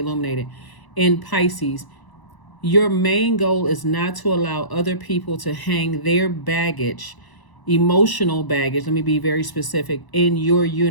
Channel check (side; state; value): right; late; 1.0 ms